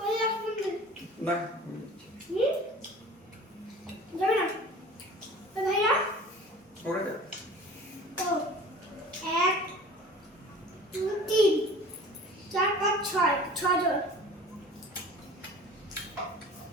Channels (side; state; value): both; normal; correlation 0.43